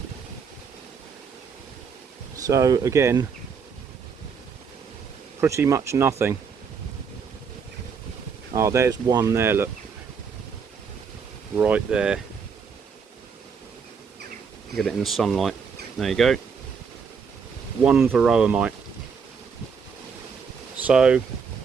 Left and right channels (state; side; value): quieter; left; 6.0 dB